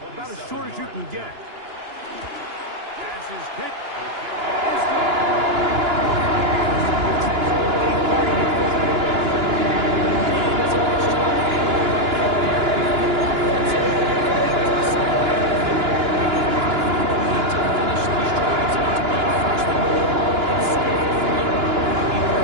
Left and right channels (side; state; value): left; late; 2.9 ms